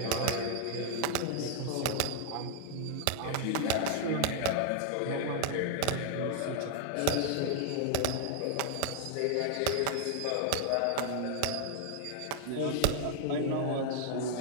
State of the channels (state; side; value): different; both; correlation 0.00